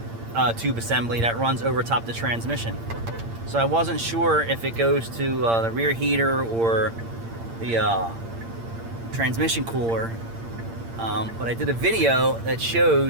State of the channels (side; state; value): left; late; 8.7 ms